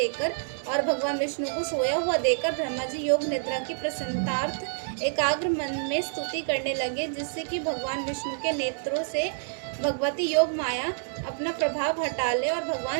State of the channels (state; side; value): silent; left; 60 dB below the other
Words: और भगवान विष्णु को सोया हुआ देखकर ब्रह्मा जी योग निद्रा की प्रसन्नतार्थ एकाग्र मन में स्तुति करने लगे, जिससे कि भगवान विष्णु के नेत्रों से भगवती योग माया अपना प्रभाव हटा ले और